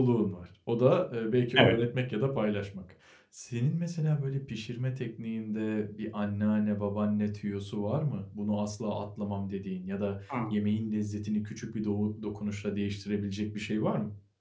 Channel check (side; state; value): both; identical; correlation 1.00